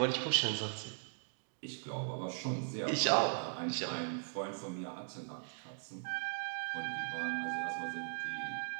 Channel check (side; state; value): left; silent; digital silence